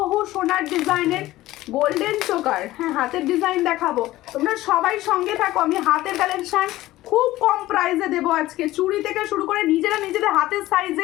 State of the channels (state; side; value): quieter; right; 16.5 dB